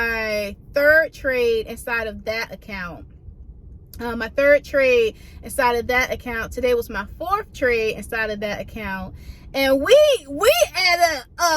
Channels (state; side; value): identical; both; correlation 1.00